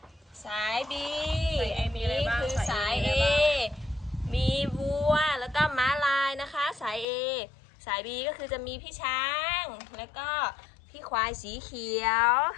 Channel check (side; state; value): right; drops out; at 7.1 s